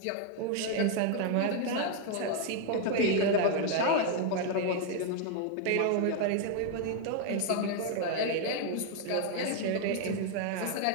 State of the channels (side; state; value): both; different; correlation 0.01